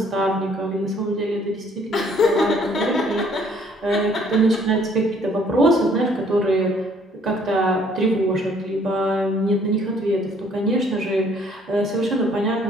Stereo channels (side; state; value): both; normal; correlation 0.61